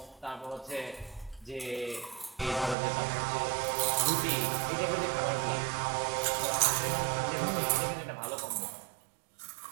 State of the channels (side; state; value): left; drops out; at 2.8 s